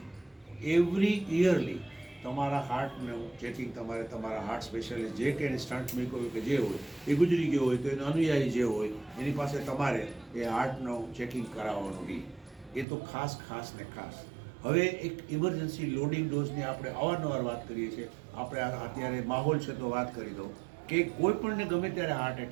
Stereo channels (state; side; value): drops out; left; at 12.9 s